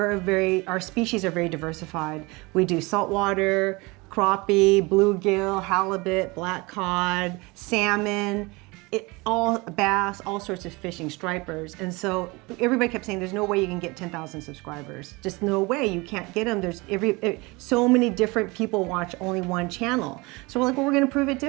species are very diversified. We do saltwater, crappie, bluegill, halibut, black cod, salmon, all bass, all sorts of fishing, stripers. And so everybody kept saying, there's no way you can get 10,000 subscribers. Just no way, you can't get them. There's so many different people watch only one channel. So we're like, well, we're gonna prove it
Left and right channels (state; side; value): quieter; left; 24.9 dB